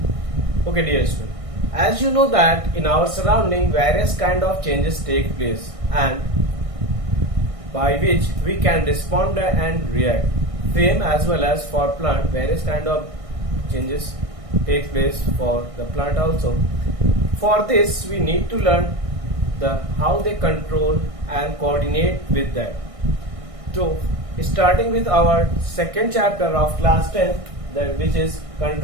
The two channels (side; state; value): left; late; 1.6 ms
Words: Okay dear student, as you know that in our surrounding various kind of changes take place and by which we can respond and react. Same as well as for plant, various kind of changes take place for the plant also. For this we need to learn how they control and coordinate with that. So starting with our second chapter of class 10, that which is